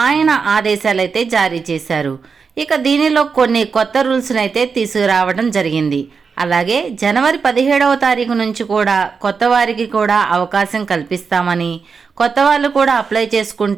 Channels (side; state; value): left; quieter; 5.4 dB